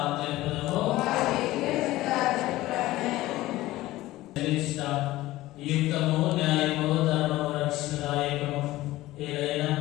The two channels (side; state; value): right; quieter; 17.0 dB